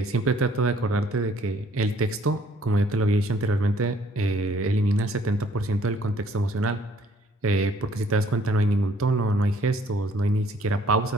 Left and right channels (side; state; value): both; normal; correlation 0.60